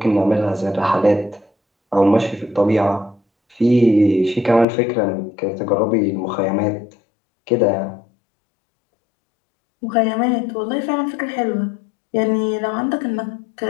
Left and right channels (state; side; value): drops out; right; at 4.7 s